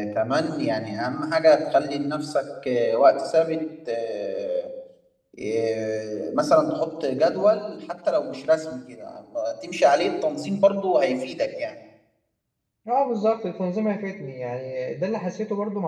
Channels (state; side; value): identical; both; correlation 1.00